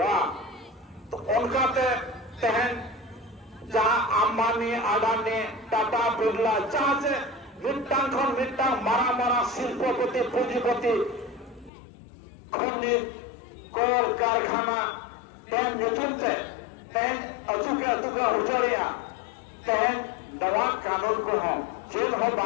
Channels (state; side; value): drops out; right; at 11.7 s